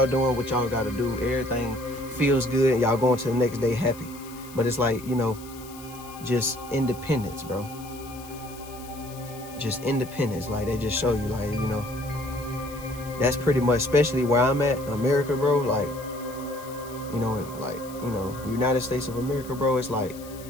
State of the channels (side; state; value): left; noise; hiss, 18 dB below the sound